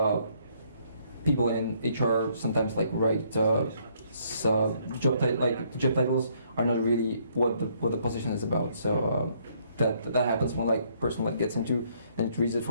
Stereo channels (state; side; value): inverted; both; correlation -0.68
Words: people in HR sometimes like write job titles are not really what the position is about. So that happens when like person like gets into and it reads it